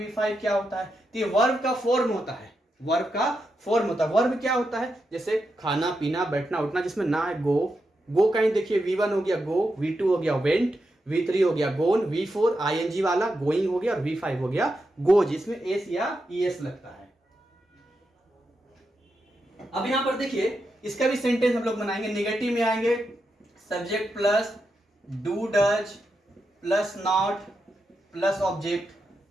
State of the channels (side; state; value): both; normal; correlation 0.86